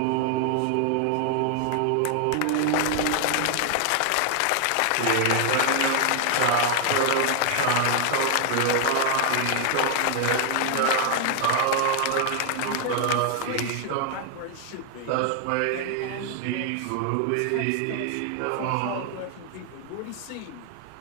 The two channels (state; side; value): different; both; correlation 0.00